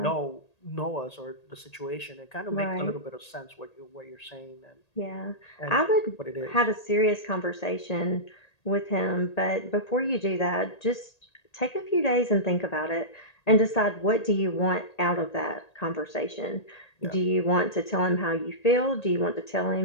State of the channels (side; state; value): right; late; 1.8 ms